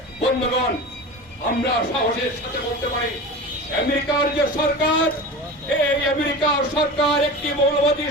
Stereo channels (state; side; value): normal; both; correlation 0.31